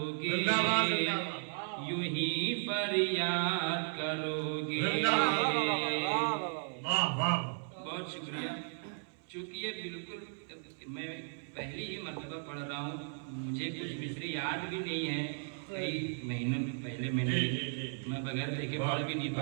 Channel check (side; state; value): left; silent; 54 dB below the other